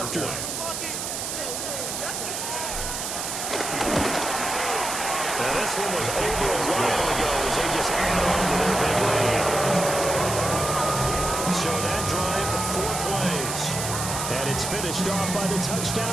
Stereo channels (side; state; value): right; noise; hiss, 4 dB below the sound